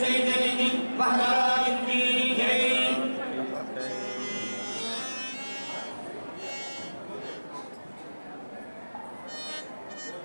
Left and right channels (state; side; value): inverted; both; correlation -1.00